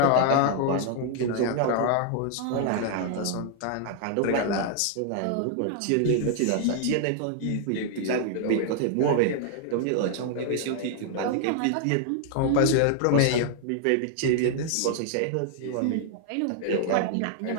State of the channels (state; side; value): different; both; correlation 0.00